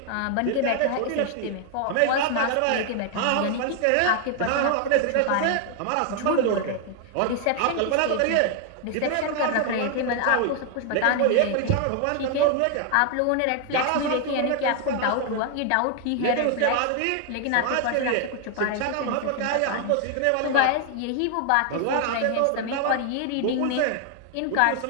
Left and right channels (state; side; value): different; both; correlation 0.00